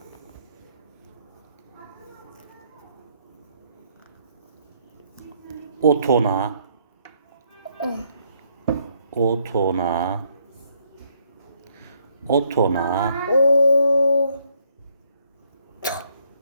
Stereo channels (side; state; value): both; inverted; correlation -0.69